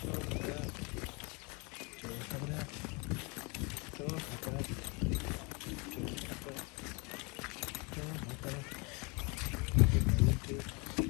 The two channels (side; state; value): right; quieter; 29.7 dB